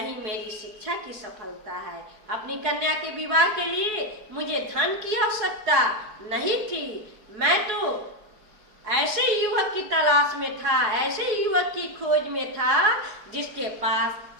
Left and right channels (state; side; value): late; left; 4.8 ms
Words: मेरी शिक्षा की सफलता है। अपनी कन्या के विवाह के लिए मुझे धन की आवश्यकता नहीं थी। मैं तो ऐसे युवक की तलाश में था, ऐसे युवक की खोज में था जिसके पास